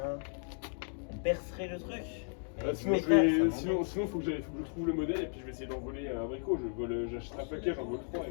On percerait le truc. Sinon, Mais je vais, ça sinon, faut que je trouve le modèle et puis je vais essayer d'envoler un abricot. J'achète un paquet, j'en vole 3.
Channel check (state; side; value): silent; right; 55 dB below the other